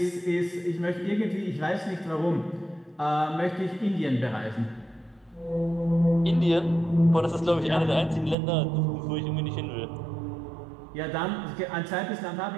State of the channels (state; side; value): drops out; left; at 8.3 s